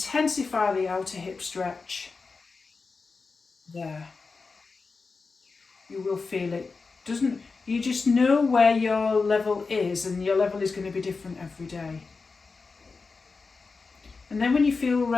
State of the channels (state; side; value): quieter; right; 4.4 dB